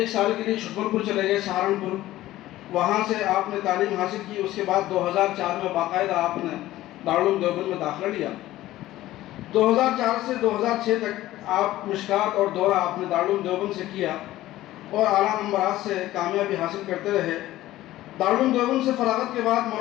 سال کے لیے چھپر پور چلے گئے، سہارنپور، وہاں سے آپ نے تعلیم حاصل کی. اس کے بعد 2004 میں باقاعدہ آپ نے دارالعلوم دیوبند میں داخلہ لیا. 2004 سے 2006 تک آپ مشکات اور دورہ آپ نے دارالعلوم دیوبند سے کیا اور اعلیٰ نمبرات سے کامیابی حاصل کرتے رہے. دارالعلوم دیوبند سے فراغت کے بعد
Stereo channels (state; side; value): quieter; right; 15.5 dB